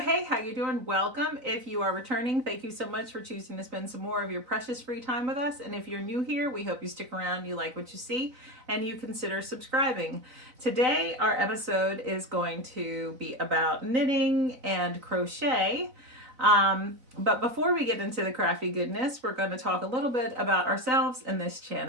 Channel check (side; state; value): left; late; 3.9 ms